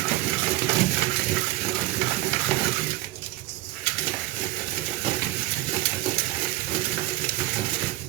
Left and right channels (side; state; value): left; quieter; 17.6 dB